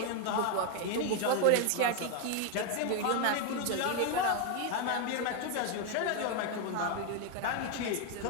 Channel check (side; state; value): both; different; correlation 0.01